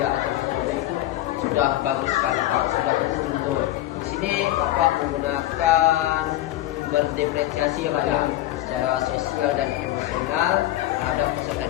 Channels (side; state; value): right; quieter; 14.9 dB